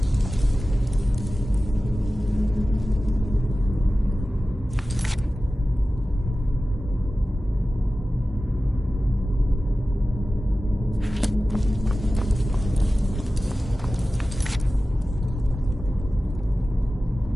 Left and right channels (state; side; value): normal; both; correlation 0.95